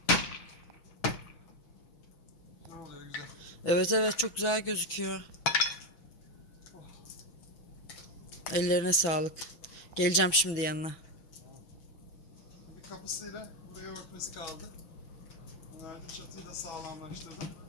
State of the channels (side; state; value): right; late; 6.1 ms